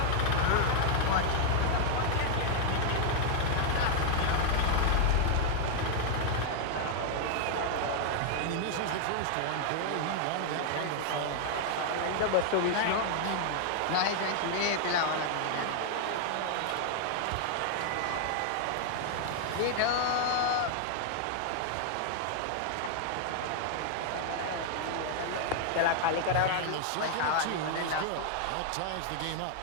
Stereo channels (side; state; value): both; different; correlation 0.00